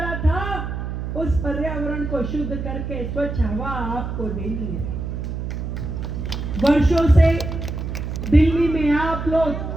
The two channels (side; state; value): right; noise; hum, 4 dB below the sound